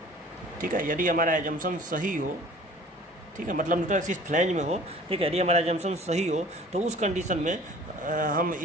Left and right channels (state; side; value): normal; both; correlation 0.48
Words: ठीक है, यदि हमारा एजम्पशन सही हो, ठीक है, मतलब न्यूट्रल एक्सिस फ्लैंज में हो, ठीक है, यदि हमारा एजम्पशन सही हो तो उस कंडीशन में हम